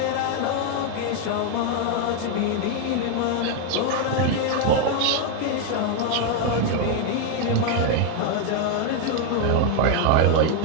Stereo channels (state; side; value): different; both; correlation 0.01